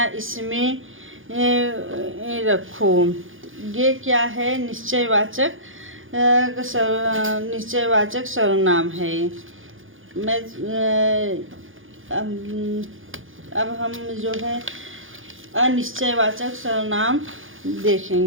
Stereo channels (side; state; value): left; late; 0.58 ms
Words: इसमें रखो। ये क्या है? निश्चयवाचक सर्वनाम है। अब हम जो है अनिश्चयवाचक सर्वनाम